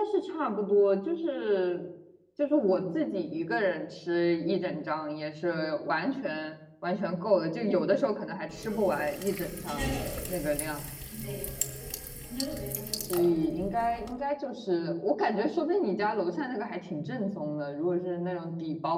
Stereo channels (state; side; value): identical; both; correlation 1.00